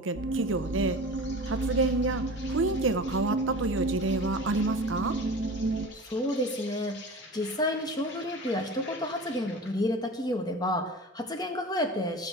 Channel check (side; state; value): both; normal; correlation 0.35